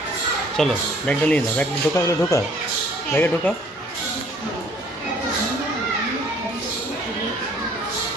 চলো ব্যাগটা নিয়ে নাও, ব্যাগটা ঢোকা হলে ঢোকা, ব্যাগে ঢোকা।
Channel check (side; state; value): both; normal; correlation 0.58